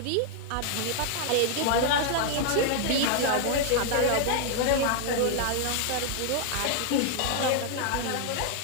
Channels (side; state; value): both; different; correlation 0.00